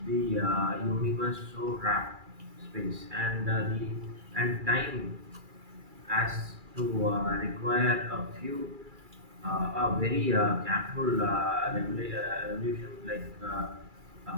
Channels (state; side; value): late; left; 2.3 ms